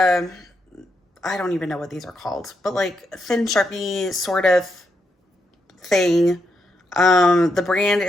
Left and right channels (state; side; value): normal; both; correlation 0.81